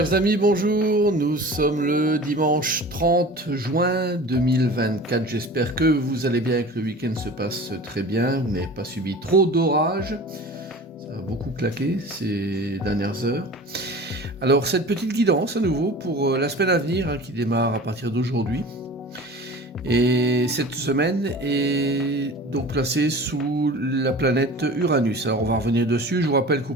amis, bonjour, nous sommes le dimanche 30 juin 2024. J'espère que vous allez bien et que le week-end se passe très bien. Vous n'avez pas subi trop d'orages. Ça a beaucoup claqué ces dernières heures. Alors, cette petite guidance à nouveau pour la semaine à venir qui démarre à partir d'aujourd'hui. Et cette semaine est donc placée sous la planète Uranus. Alors on va revenir dessus. Je vous rappelle que vous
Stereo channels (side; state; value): both; normal; correlation 0.39